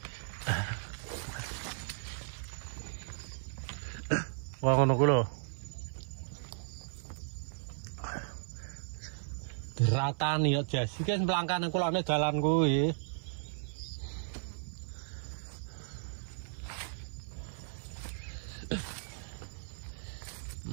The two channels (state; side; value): silent; left; 54 dB below the other